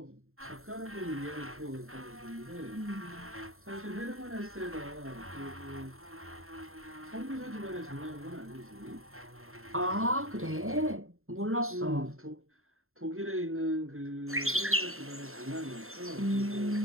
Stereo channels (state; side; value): late; left; 0.62 ms